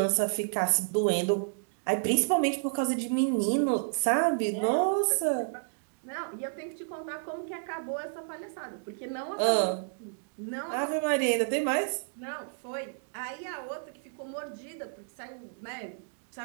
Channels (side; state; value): left; silent; digital silence